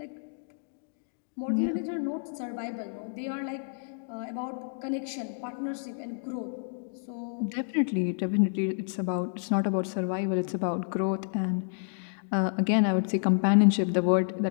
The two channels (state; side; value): silent; right; digital silence